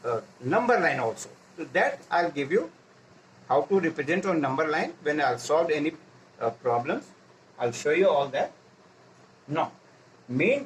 number line also. So that I'll give you how to represent on number line when I'll solve any problems. I'll show you all that. Now, main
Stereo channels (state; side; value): identical; both; correlation 1.00